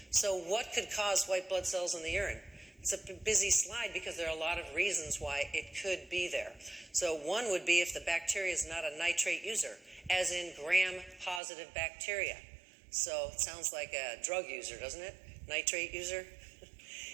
So what could cause white blood cells in the urine? It's a busy slide because there are a lot of reasons why it could be there. So one would be if the bacteria is not a nitrate user, as in gram-positive bacteria. So it sounds like a drug user, doesn't it? Nitrate user?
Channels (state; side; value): drops out; left; at 11.4 s